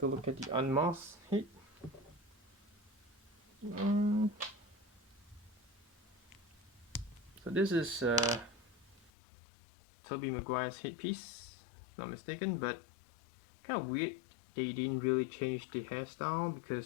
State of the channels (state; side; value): drops out; right; at 9.1 s